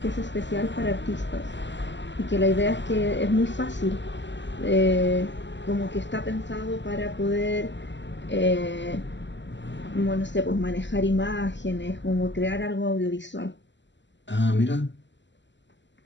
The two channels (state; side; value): late; right; 0.53 ms